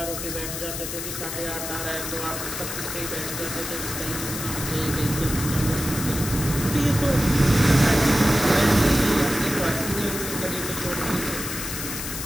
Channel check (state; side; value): noise; left; hiss, 6 dB below the sound